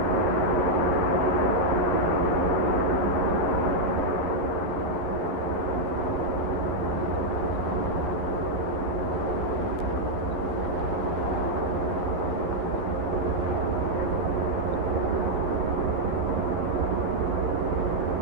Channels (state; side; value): late; left; 12 ms